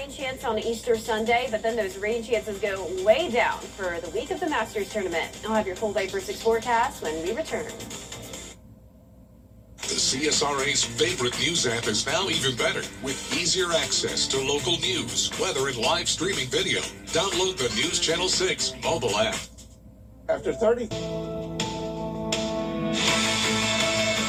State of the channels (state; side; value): identical; both; correlation 1.00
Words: chance on Easter Sunday, but then those rain chances go way down for the week of the Masters tournament. I'll have your full day for 6 forecast when we return. The CSRA's favorite news app is now even better with easier access to local news, weather, and live streaming video. Download the News Channel 6 mobile app. After 30.